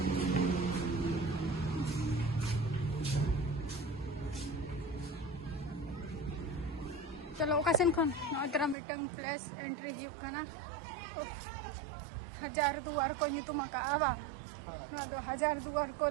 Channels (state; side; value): drops out; left; at 8.8 s